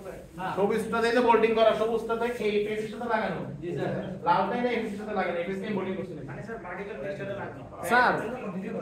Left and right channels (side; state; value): both; identical; correlation 1.00